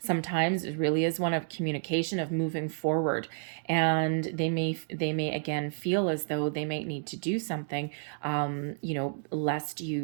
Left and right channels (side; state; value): left; silent; digital silence